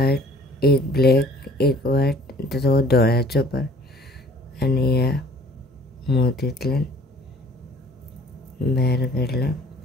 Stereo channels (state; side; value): normal; both; correlation 0.54